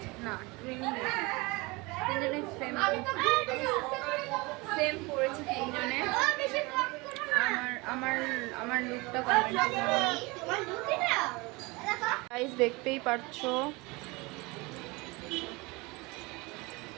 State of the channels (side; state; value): left; quieter; 24.8 dB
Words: না, ট্রেনিং তিনজনে সেম পড়েছে, তিনজনে। আমার আমার আমার লুকটা কমেন্ট গাইস দেখতেই পারছো।